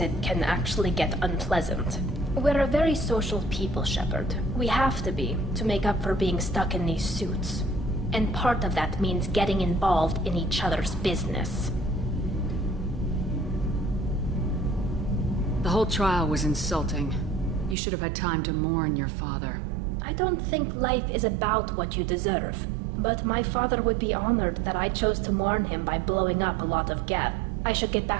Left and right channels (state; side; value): drops out; left; at 17.8 s